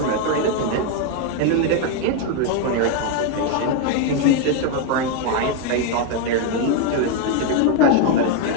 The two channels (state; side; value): different; both; correlation 0.01